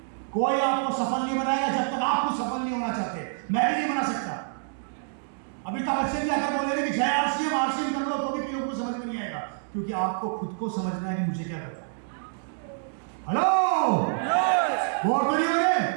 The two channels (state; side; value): silent; left; digital silence